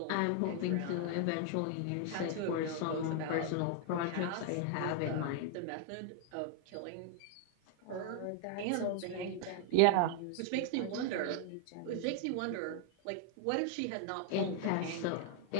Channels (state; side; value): different; both; correlation 0.00